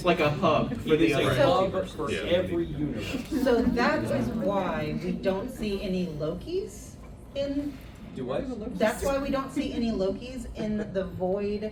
like a hub for It the is a other hub multiverse. for every universe. So that is why we don't see any Lokis in Do what? That's why we don't see any Lokis in the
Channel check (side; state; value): both; identical; correlation 1.00